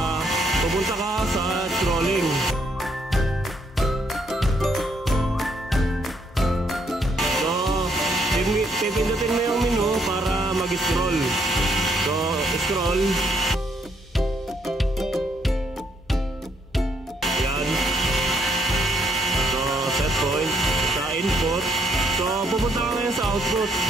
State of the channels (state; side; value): normal; both; correlation 0.73